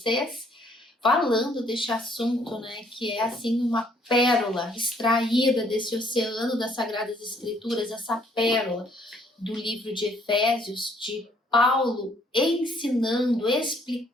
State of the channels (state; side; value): normal; both; correlation 0.65